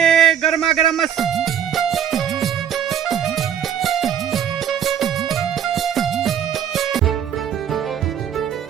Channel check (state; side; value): quieter; left; 8.7 dB